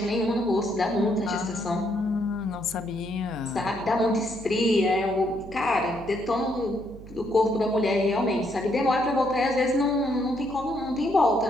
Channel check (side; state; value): right; noise; hum, 16 dB below the sound